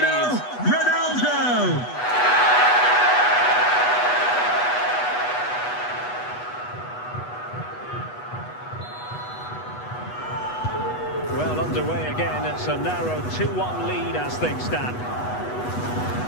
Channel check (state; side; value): late; right; 8.1 ms